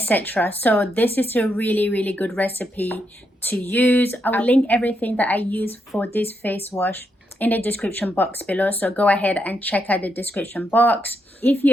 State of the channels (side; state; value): both; normal; correlation 0.80